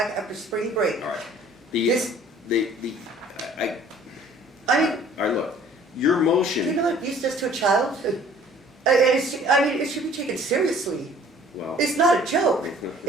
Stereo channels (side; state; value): both; normal; correlation 0.53